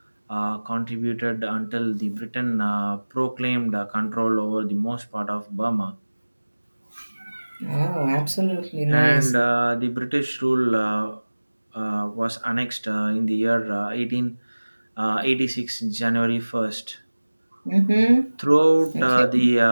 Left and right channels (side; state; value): both; inverted; correlation -1.00